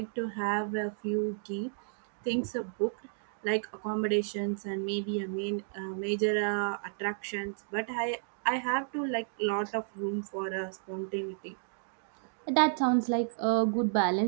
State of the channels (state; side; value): silent; left; digital silence